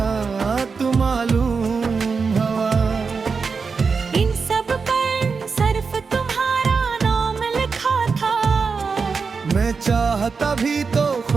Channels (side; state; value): left; quieter; 5.0 dB